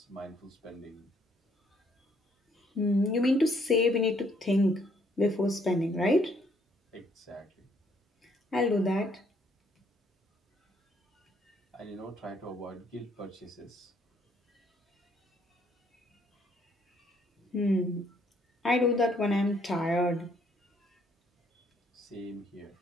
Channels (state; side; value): normal; both; correlation 0.67